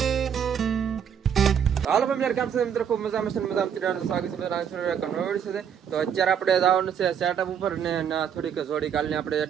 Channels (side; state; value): left; quieter; 8.1 dB